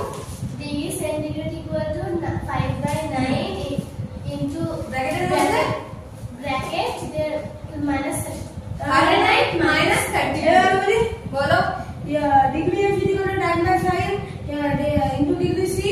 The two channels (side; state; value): both; identical; correlation 1.00